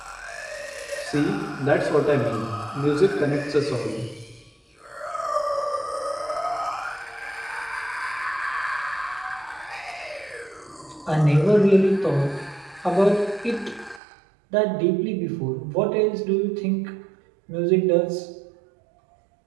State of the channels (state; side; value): drops out; left; at 14.0 s